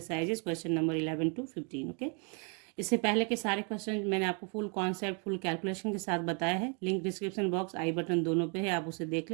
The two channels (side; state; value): left; quieter; 36.9 dB